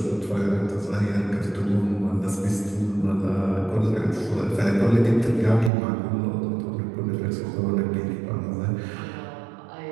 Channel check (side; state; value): left; drops out; at 5.7 s